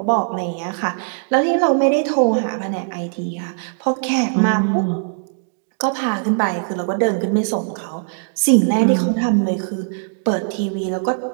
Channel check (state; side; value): silent; left; digital silence